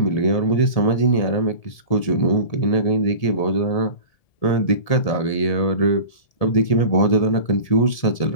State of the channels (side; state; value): right; late; 1.7 ms